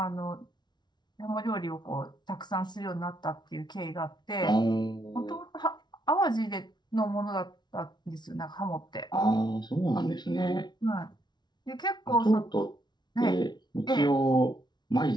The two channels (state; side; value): late; right; 0.20 ms